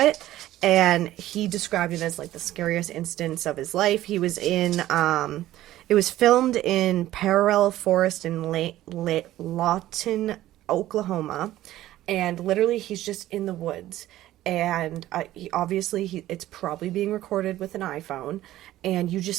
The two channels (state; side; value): quieter; left; 14.5 dB